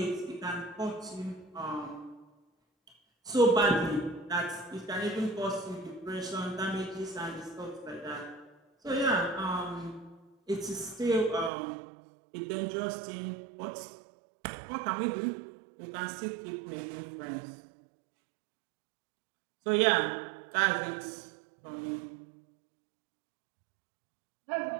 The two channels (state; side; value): drops out; left; at 11.5 s